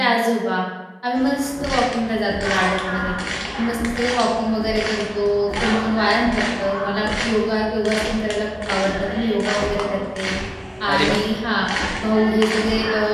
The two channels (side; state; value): both; identical; correlation 1.00